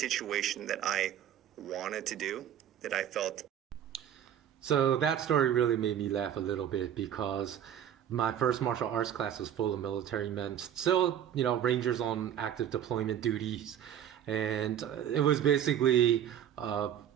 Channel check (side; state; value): left; quieter; 10.0 dB